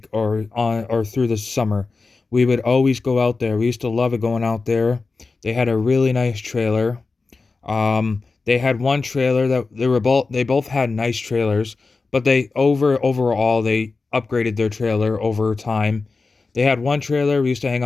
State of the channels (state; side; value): quieter; right; 4.0 dB